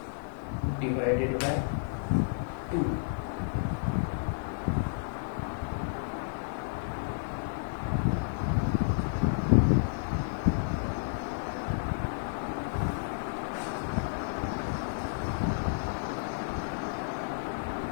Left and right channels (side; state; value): right; silent; digital silence